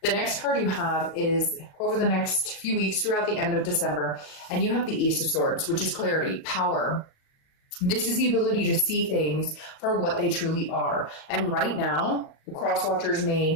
The next card you have is over the next few weeks throughout the end of December, and you have the Ace of Swords, which is clarity, power. This is the ability to see things for what they truly are. And right now, the cross watchers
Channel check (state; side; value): late; right; 38 ms